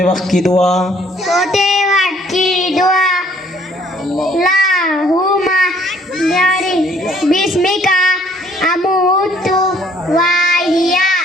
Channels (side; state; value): both; normal; correlation 0.61